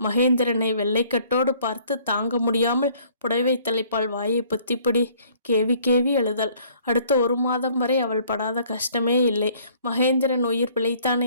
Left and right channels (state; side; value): inverted; both; correlation -0.58